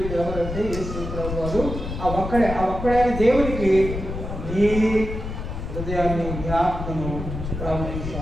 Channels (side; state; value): left; noise; rumble, 6 dB below the sound